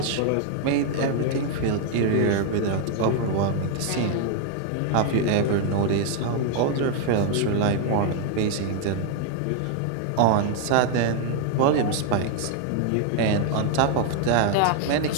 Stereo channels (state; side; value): different; both; correlation 0.00